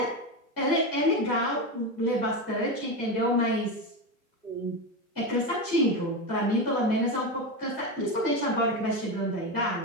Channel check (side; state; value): right; late; 2.6 ms